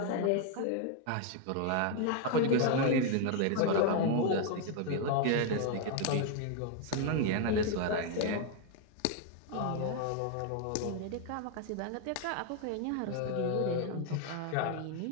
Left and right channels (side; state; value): both; different; correlation 0.00